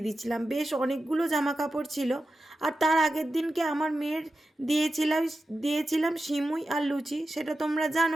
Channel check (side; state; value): both; normal; correlation 0.91